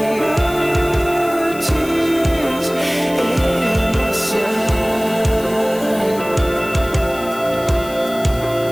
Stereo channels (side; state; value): left; noise; hiss, 16 dB below the sound